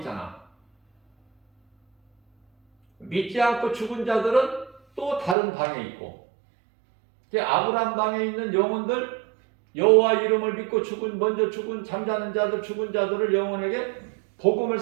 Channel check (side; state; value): left; drops out; at 5.4 s